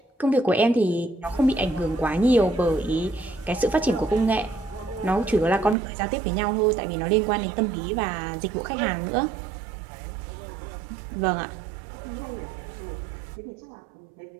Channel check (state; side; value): drops out; left; at 5.8 s